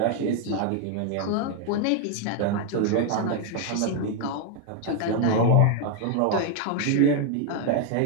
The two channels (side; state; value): both; different; correlation 0.01